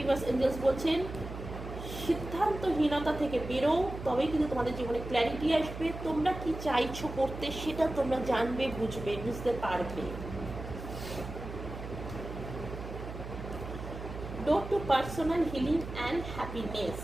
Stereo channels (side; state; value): right; noise; hum, 9 dB below the sound